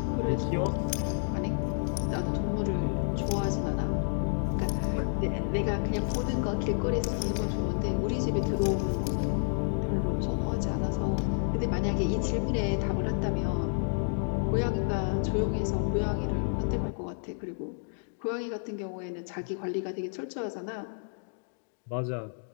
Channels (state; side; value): silent; right; digital silence